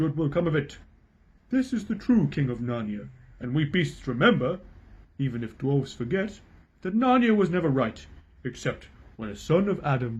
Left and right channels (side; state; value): both; identical; correlation 1.00